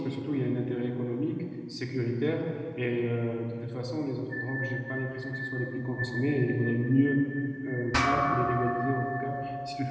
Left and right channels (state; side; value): identical; both; correlation 1.00